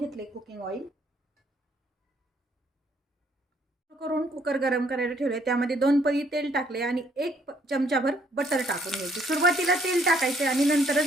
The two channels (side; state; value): both; normal; correlation 0.65